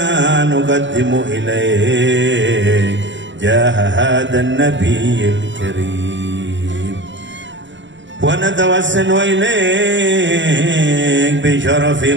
نقدم إليك جاه هذا النبي الكريم، ونتوسل إليك بشرف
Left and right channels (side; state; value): left; late; 0.54 ms